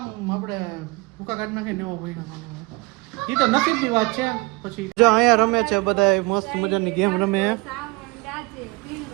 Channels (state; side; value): quieter; left; 25.5 dB